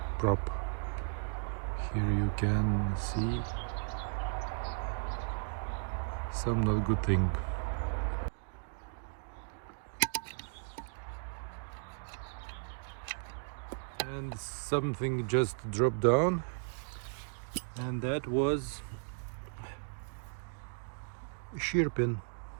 prop. Here you can see some not good thing. And something just dropped down, and that was a shear pin.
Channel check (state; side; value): silent; left; digital silence